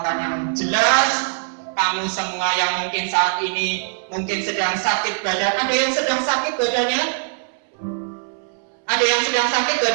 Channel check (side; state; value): left; silent; 63 dB below the other